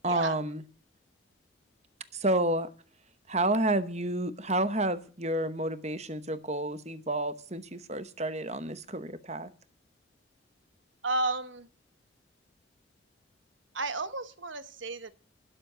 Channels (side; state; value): both; normal; correlation -0.01